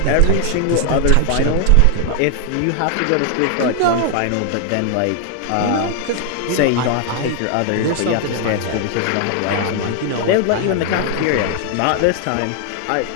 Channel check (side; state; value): both; different; correlation 0.00